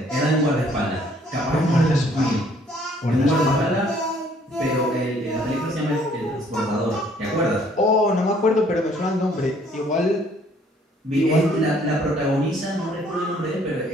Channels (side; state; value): both; normal; correlation 0.61